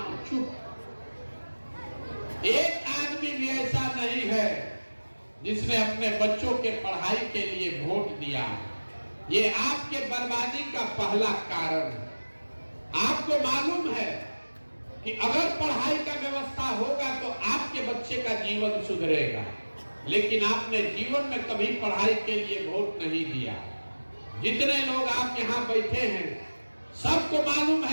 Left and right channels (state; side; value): inverted; both; correlation -1.00